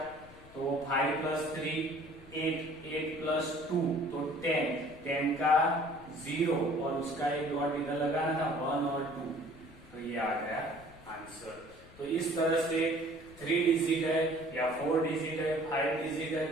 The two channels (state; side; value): noise; left; rumble, 21 dB below the sound